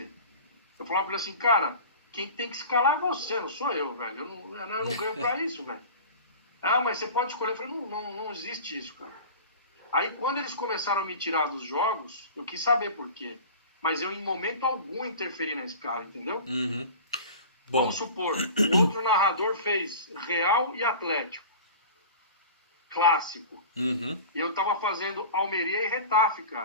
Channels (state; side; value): inverted; both; correlation -0.37